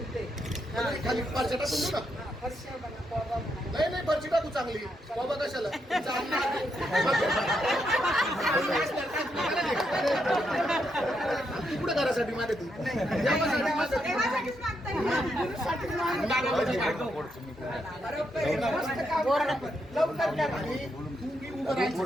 खाली फरशा टाकून देऊ ना. फरशा म्हणा, कोबा म्हणा. नाही फरशी टाकू चांगली बाबा कशाला तू कुठे घरासाठी मागे तू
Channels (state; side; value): normal; both; correlation 0.80